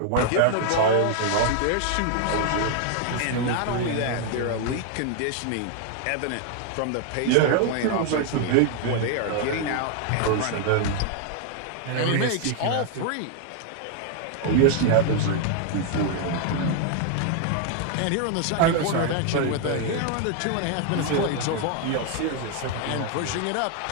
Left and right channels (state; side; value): different; both; correlation 0.00